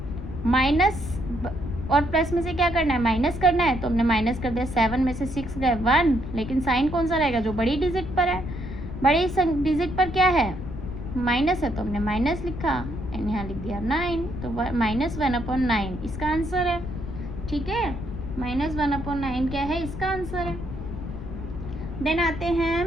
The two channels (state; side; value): noise; left; rumble, 9 dB below the sound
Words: माइनस, और प्लस में से क्या करना है, माइनस करना है, तो हमने माइनस कर दिया। 7 में से 6 गए 1, लेकिन साइन कौन सा रहेगा, जो बड़ी डिजिट पर है, बड़ी डिजिट पर क्या है, माइनस है, तो हमने माइनस लिखा एंड यहाँ लिख दिया 9, तो -1/9 इसका आंसर है, ठीक है। -1/9 क्या है, इसका आंसर है। देन आते हैं हम